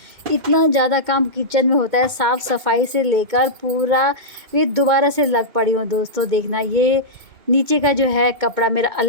इतना ज़्यादा काम किचन में होता है, साफ़ सफाई से लेकर पूरा। ये दोबारा से लग पड़ी हूँ दोस्तों, देखना ये नीचे का जो है कपड़ा मेरा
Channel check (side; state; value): left; late; 2.1 ms